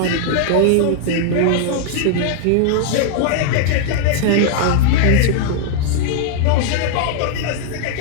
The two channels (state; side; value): different; both; correlation -0.01